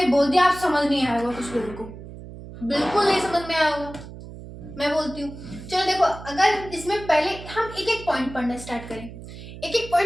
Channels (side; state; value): right; noise; hum, 14 dB below the sound